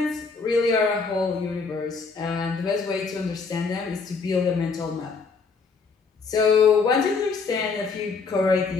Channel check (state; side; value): quieter; right; 4.8 dB